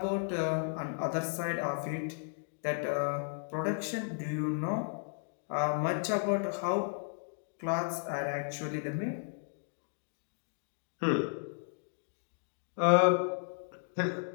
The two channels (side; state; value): right; silent; 55 dB below the other